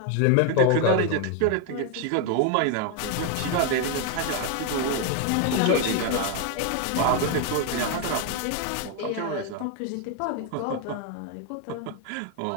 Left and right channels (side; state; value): both; different; correlation 0.01